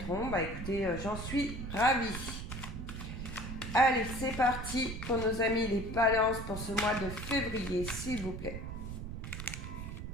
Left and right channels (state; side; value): noise; right; rumble, 7 dB below the sound